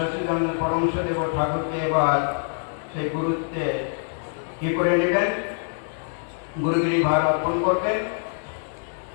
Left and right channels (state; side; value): silent; right; digital silence